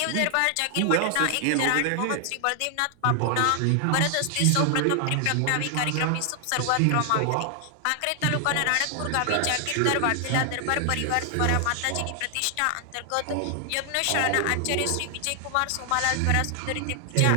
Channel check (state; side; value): different; both; correlation 0.00